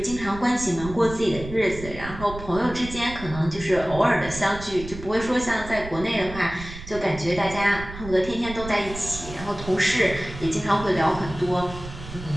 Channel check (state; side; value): noise; right; rumble, 12 dB below the sound